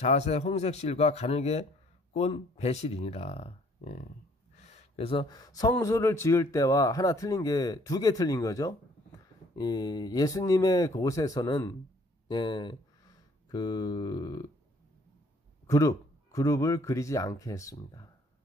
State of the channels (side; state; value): both; normal; correlation 0.60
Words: 홍색 실과 가늘게 꼰 배실이니라. 예. 그래서 성소를 지을 때와 하나 틀린 게 두 개 틀린 거죠. 예수님의 곳에서는 그룹을 그리지 않게 했습니다.